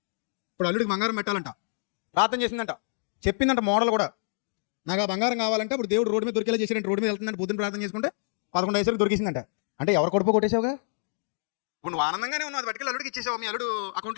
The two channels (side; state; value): right; silent; digital silence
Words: ఇప్పుడు అల్లుడికి బంగారం పెట్టాలంట. ప్రార్థన చేసిందంట, చెప్పిందంట మోడల్ కూడా. నాకు ఆ బంగారం కావాలంటే ఇప్పుడు దేవుడు రోడ్డు మీద దొరికేలా చేసాడంటే, రోడ్డు మీద వెళ్తుందంటే పొద్దున్న ప్రార్థన చేసుకుంటే 11 వయసులకు దొరికిసిందంట. అంటే ఎవరు కొడుపు కొట్టేసావుగా? ఇప్పుడు నువ్వు ఆనందంగానే ఉన్నావు, అది పట్టుకెళ్ళి అల్లుడికి ఇచ్చేసావు, మీ అల్లుడు